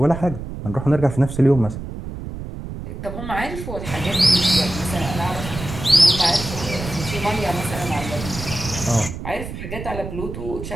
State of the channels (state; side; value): noise; right; rumble, 9 dB below the sound